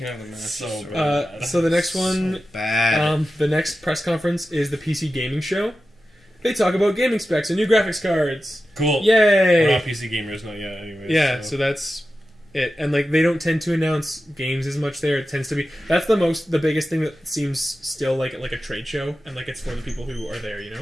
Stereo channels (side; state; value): both; normal; correlation 0.93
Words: have the mask. So bad. So the next one, bad. the next press conference is the PC Gaming Show. They talk about gaming specs and new graphics cards. Cool. Yay! We're not PC gamers, not yet. Anyways. Yeah, so that's it. And like they don't tend to announce games as much there. It tends to be the biggest thing that seems still like a trade show, and like it's for the people who are there, you know.